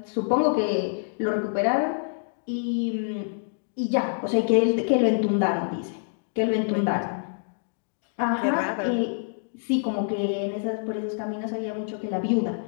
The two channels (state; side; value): silent; right; digital silence